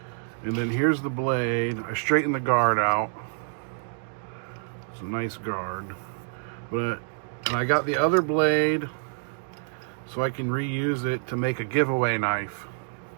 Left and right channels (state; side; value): silent; left; digital silence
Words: And then here's the blade. I straightened the guard out. It's a nice guard. And I got the other blade so I can reuse it to make a giveaway knife.